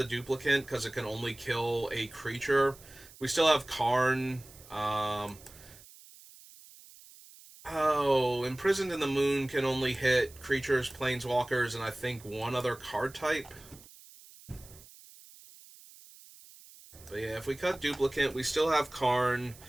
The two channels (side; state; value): right; noise; hiss, 21 dB below the sound